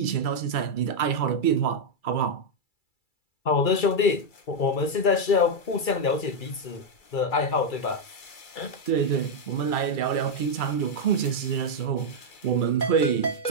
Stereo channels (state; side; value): late; right; 2.3 ms